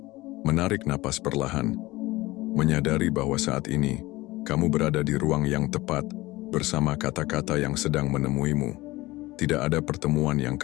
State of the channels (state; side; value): quieter; right; 19.6 dB